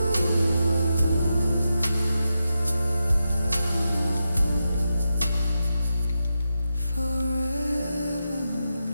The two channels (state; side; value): inverted; both; correlation -0.89